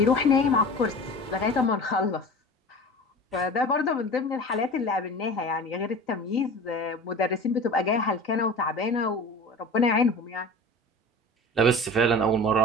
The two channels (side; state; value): both; normal; correlation 0.36